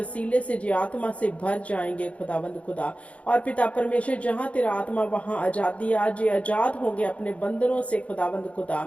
से जो आत्मा से भर जाएंगे खुदावंद खुदा। और पिता परमेश्वर, जहाँ तेरा आत्मा वहाँ आजादी, आज ये आजाद होंगे अपने बंधनों से खुदावंद खुदा।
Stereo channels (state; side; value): late; right; 0.064 ms